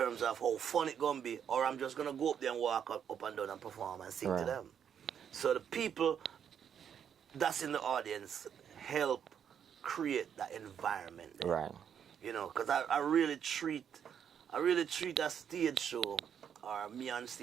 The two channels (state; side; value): quieter; left; 8.3 dB